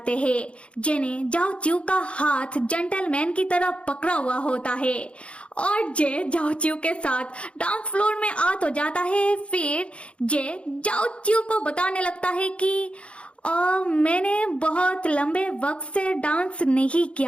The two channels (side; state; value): right; late; 0.060 ms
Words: हैं। जे ने जाओ चिऊ का हाथ जेंटलमैन की तरह पकड़ा हुआ होता है और जे जाओ चिऊ के साथ डांस फ्लोर में आ तो जाता है। फिर जे जाओ चिऊ को बताने लगता है कि मैंने बहुत लंबे वक्त से डांस नहीं